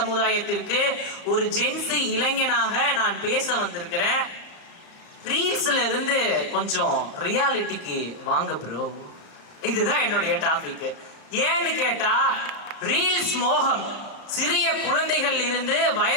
ஒரு ஜென்சி இளைஞனாக நான் பேச வந்திருக்கிறேன். ரீல்ஸ்ல இருந்து கொஞ்சம் ரியாலிட்டிக்கு வாங்க ப்ரோ, இதுதான் என்னுடைய டாபிக். ஏன்னு கேட்டா, ரீல்ஸ் மோகம் சிறிய குழந்தைகள் இருந்து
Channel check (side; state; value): right; late; 34 ms